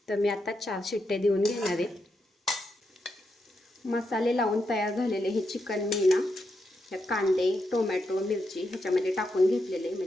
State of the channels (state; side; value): normal; both; correlation 0.83